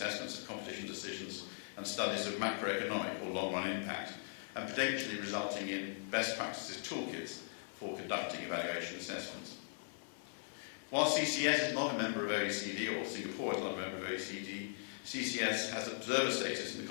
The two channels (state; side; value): silent; right; 52 dB below the other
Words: of competition decisions, and studies of macroeconomic or long-run impact, and potentially resulting in best practices toolkits for conducting evaluation assessments. While CCS is not a member of OECD, or Singapore is not a member of OECD, CCS has observer status in the